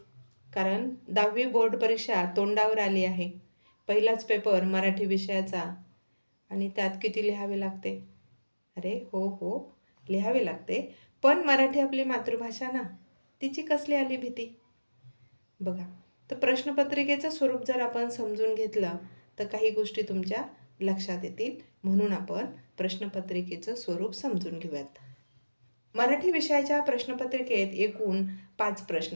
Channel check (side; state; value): both; inverted; correlation -1.00